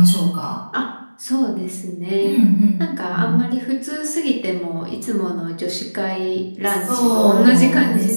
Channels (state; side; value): inverted; both; correlation -1.00